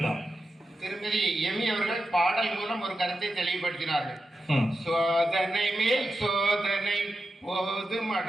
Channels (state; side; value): normal; both; correlation 0.90